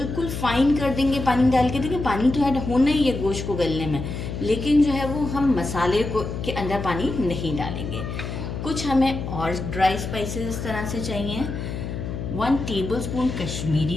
फाइन कर देंगे पानी डाल के। देखिए, पानी तो ऐड होना ही है गोश्त को गलने में, लेकिन जो है वो हम मसाले को के अंदर पानी नहीं डालेंगे। कुछ हमें और ड्राई स्पाइसेस इस तरह से चाहिए। 1 टेबलस्पून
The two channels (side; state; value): left; noise; hum, 6 dB below the sound